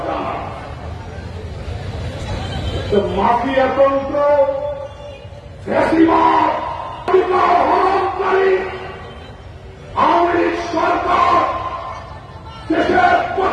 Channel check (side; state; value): both; identical; correlation 1.00